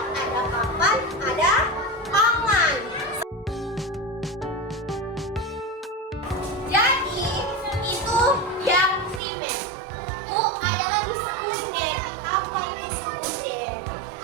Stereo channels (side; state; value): left; drops out; at 9.2 s